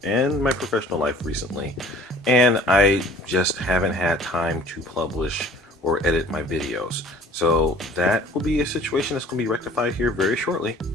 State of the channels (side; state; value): both; normal; correlation 0.50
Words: and my professional life recently, and I just haven't had time to publish or edit my videos. So that will be a situation that's going to be rectified here very shortly.